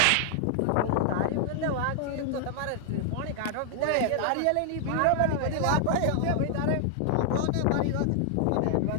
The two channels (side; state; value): both; different; correlation 0.00